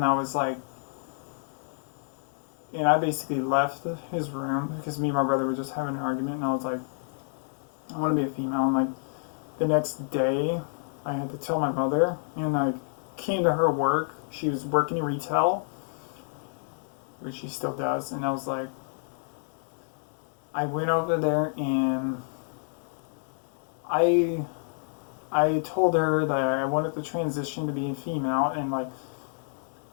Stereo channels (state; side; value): silent; right; 59 dB below the other